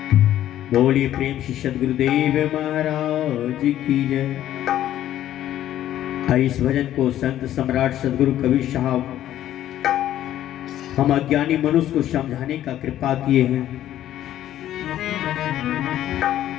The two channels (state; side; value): quieter; right; 12.3 dB